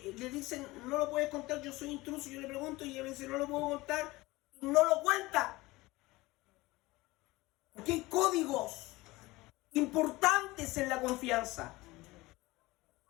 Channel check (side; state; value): right; quieter; 20.5 dB